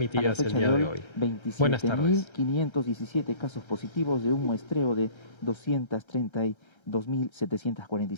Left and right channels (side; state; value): right; late; 1.3 ms